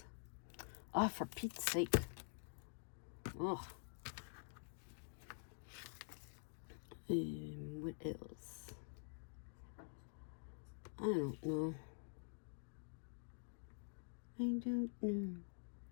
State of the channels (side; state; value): right; silent; digital silence